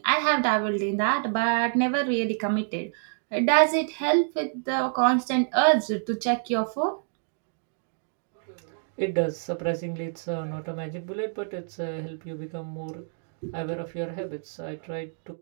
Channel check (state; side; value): silent; left; digital silence